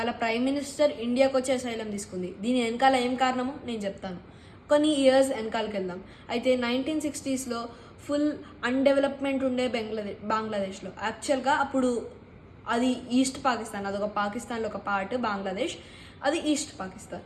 ప్రైమ్ మినిస్టర్ ఇండియాకి వచ్చి అసైలం తీసుకుంది. దీని వెనకాల ఏం కారణమో నేను చెప్తాను. కొన్ని ఇయర్స్ వెనకాలకి వెళ్దాం. అయితే 1960స్లో ఫుల్ అన్డెవలప్మెంట్ ఉండే బంగ్లాదేశ్లో. యాక్చువల్గా అప్పుడు అది ఈస్ట్ పాకిస్తాన్, అదొక పాకిస్తాన్లో ఒక పార్ట్ బంగ్లాదేశ్, అది ఈస్ట్ పాకిస్తాన్.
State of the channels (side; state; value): both; identical; correlation 1.00